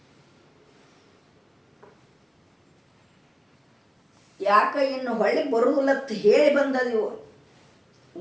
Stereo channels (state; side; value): identical; both; correlation 1.00